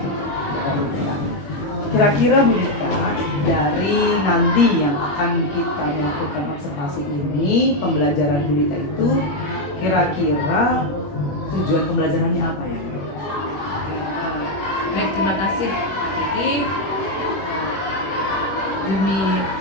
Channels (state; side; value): late; right; 21 ms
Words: Kira-kira Bu Dita, dari nanti yang akan kita melakukan observasi ini, pembelajaran Bu Dita itu kira-kira tujuan pembelajarannya apa ya? Baik, terima kasih Pak Kiki. Demi